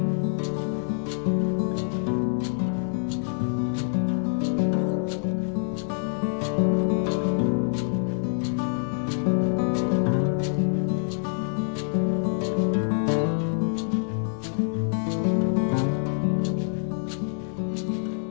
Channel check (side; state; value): right; silent; 61 dB below the other